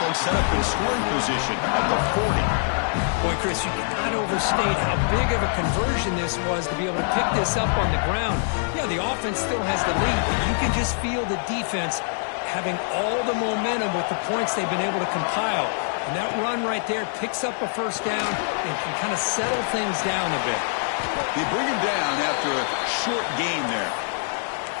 set up in scoring position at the 40. Boy, Chris, you cannot overstate how big of a conversion this was to be able to pick this up on the ground. Yeah, the offense still has the lead, but you can just feel the defense having all the momentum with the points they've been able to compile. And that run right there picks up a first down and can kind of settle things down a bit. They bring him down after a short game there.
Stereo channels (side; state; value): right; silent; digital silence